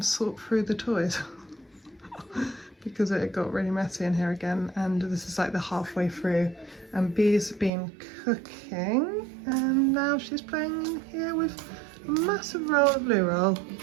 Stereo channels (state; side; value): drops out; left; at 7.7 s